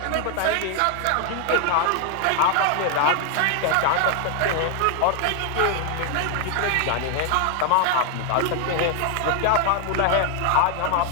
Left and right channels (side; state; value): both; different; correlation 0.00